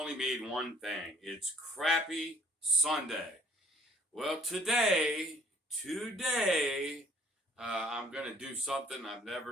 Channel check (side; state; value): both; normal; correlation 0.57